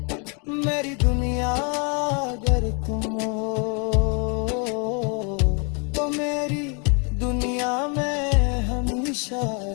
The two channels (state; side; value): quieter; right; 35.9 dB